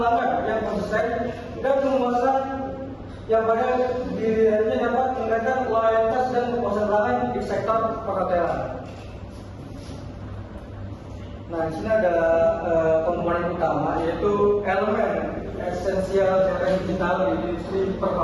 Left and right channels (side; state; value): both; identical; correlation 1.00